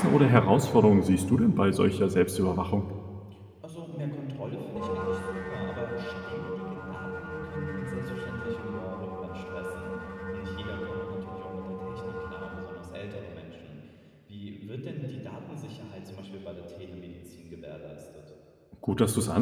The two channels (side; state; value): both; identical; correlation 1.00